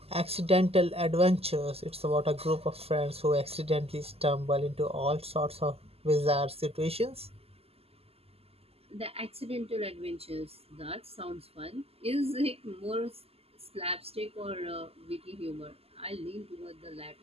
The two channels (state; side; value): late; left; 0.29 ms